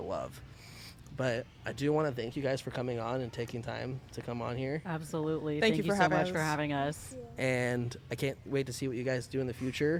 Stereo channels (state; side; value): identical; both; correlation 1.00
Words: But I do want to thank you guys for coming on and taking time to come on here. Absolutely. Thank you for so having much us. for having us. And I can't wait to see what you guys do in the